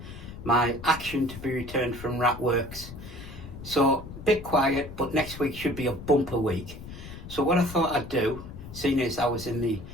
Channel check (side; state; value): left; noise; rumble, 13 dB below the sound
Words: my action to be returned from Ratworks. So a bit quiet, but next week should be a bumper week. So what I thought I'd do, seeing as I was in the